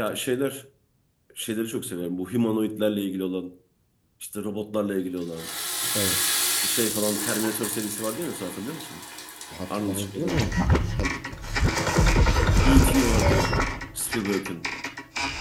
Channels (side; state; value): both; identical; correlation 1.00